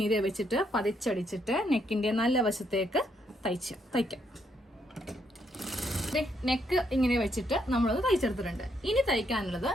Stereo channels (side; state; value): both; normal; correlation 0.75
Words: വെച്ചിട്ട് പതിച്ചടിച്ചിട്ട് നെക്കിന്റെ നല്ല വശത്തേക്ക് തയ്ക്കാം. നെക്ക് ഇങ്ങനെ വെച്ചിട്ട് നമ്മളത് തയ്ച്ചെടുത്തിട്ടുണ്ട്. ഇനി തയ്ക്കാനുള്ളത്